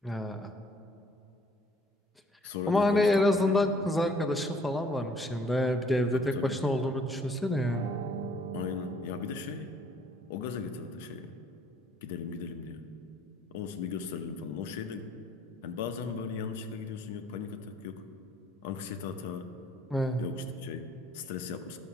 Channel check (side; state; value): both; normal; correlation 0.61